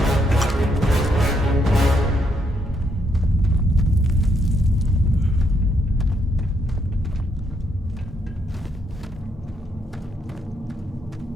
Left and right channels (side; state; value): both; normal; correlation 0.76